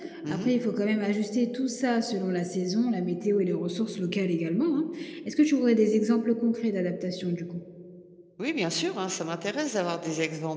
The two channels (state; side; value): identical; both; correlation 1.00